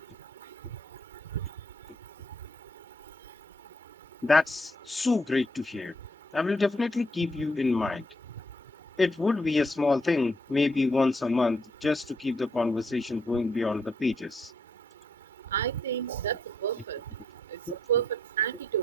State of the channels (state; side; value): normal; both; correlation 0.74